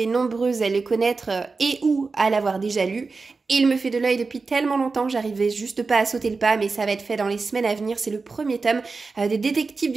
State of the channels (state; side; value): quieter; left; 4.2 dB